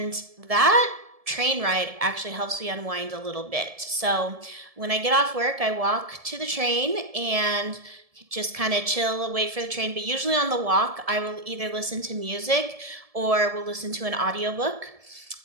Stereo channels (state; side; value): late; left; 1.7 ms